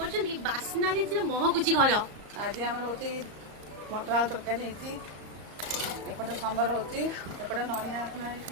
ବାସ୍ନାରେ ଯେ ମହକୁଛି ଘର। ଆଜି ଆମର ହଉଛି ମଟର ଆଳୁ ତରକାରୀ ହେଇଛି, ଏପଟେ ସମ୍ବର ହଉଛି, ଏପଟେ ନଡ଼ିଆ ପୁରା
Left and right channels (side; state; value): left; late; 34 ms